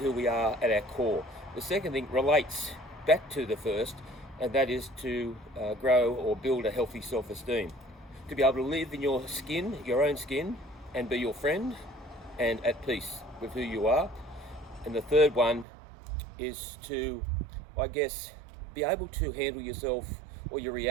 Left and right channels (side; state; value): left; drops out; at 15.7 s